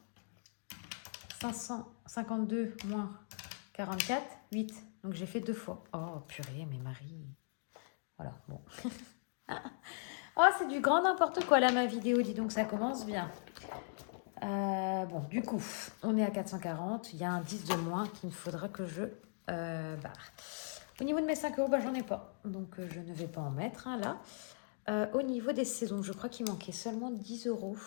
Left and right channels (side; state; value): right; silent; digital silence